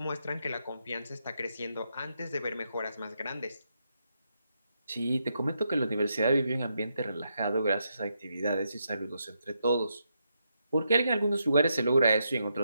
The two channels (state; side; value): inverted; both; correlation -0.81